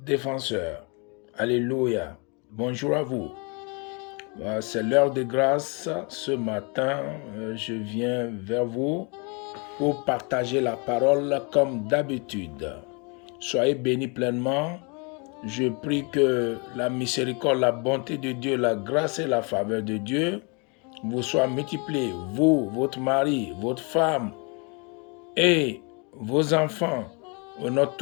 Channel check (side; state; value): right; quieter; 32.6 dB